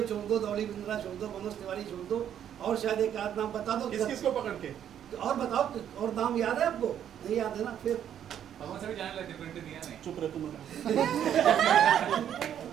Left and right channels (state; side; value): quieter; left; 9.8 dB